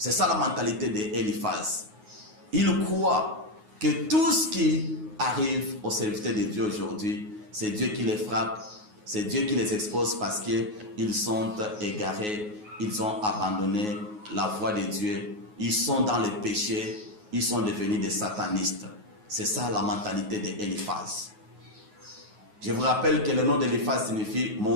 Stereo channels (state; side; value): late; left; 9.5 ms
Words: ça la mentalité d'Eliphaz. Il croit que tout ce qui arrive aux serviteurs de Dieu aujourd'hui, c'est Dieu qui les frappe, c'est Dieu qui les expose parce qu'ils sont égarés, ils ont abandonné la voie de Dieu, ils sont dans le péché, ils sont devenus des satanistes. C'est ça la mentalité d'Eliphaz. Je vous rappelle que le nom d'Eliphaz signifie «